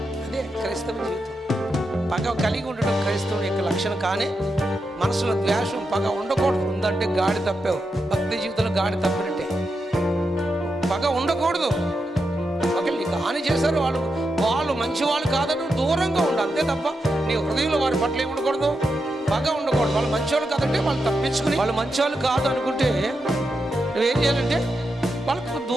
అదే క్రైస్తవ జీవితం. పగ కలిగి ఉండడం క్రైస్తవుని యొక్క లక్షణం. కానీ మనసులో ద్వేషం, పగ ఉండకూడదు. ఉందంటే గాడి తప్పావు, భక్తి జీవితంలో గాడి తప్పినట్టే. పగ ఉండకూడదు. ఒకవేళ నీకు హాని చేశారు, వాళ్ళు మంచి వాళ్ళు కాదని దూరంగా ఉండు, అంతే తప్ప నీ హృదయంలో వారి పట్ల ఏమి ఉండకూడదు, పగ ఉండకూడదు. వాళ్ళు మంచివాళ్ళు కాదంటే వాళ్ళు తప్పించుకుని, వాళ్ళు మంచివాళ్ళు కాదు అనుకుంటే నువ్వేం చేయాలంటే వాళ్ళకు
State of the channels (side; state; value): both; normal; correlation 0.86